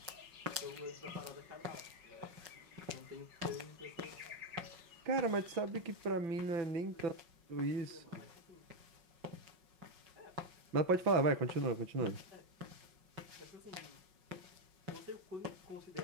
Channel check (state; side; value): late; left; 5.4 ms